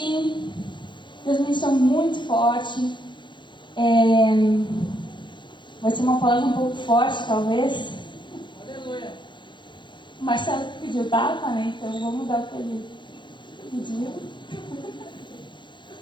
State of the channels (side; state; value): right; late; 0.23 ms